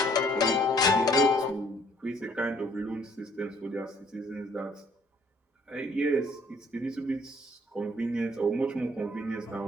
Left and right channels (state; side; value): normal; both; correlation 0.61